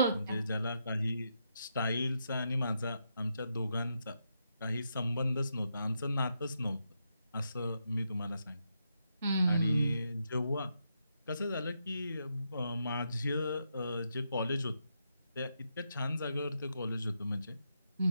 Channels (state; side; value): inverted; both; correlation -0.81